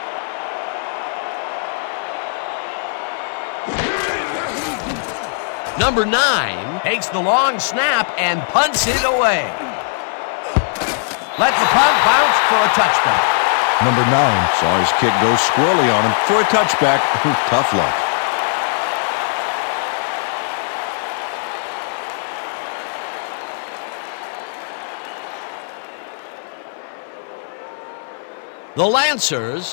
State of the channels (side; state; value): right; silent; digital silence